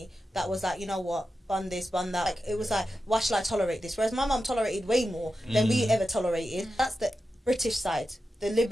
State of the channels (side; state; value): both; normal; correlation 0.91